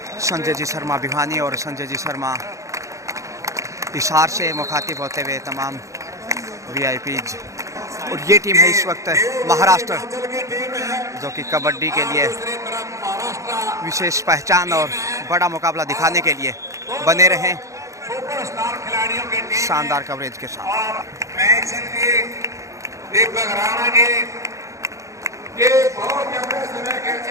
संजय जी शर्मा भिवानी और संजय जी शर्मा हिसार से मुखातिब होते हुए तमाम वीआईपीज। और ये टीम है इस वक्त महाराष्ट्र जो कि कबड्डी के लिए विशेष पहचान और बड़ा मुकाबला दिखाने के लिए बने रहें शानदार कवरेज के साथ।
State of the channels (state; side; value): late; left; 0.15 ms